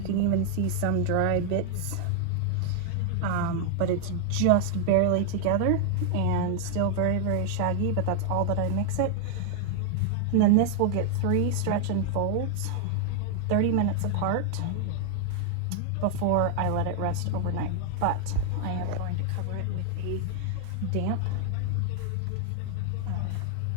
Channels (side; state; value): both; different; correlation 0.00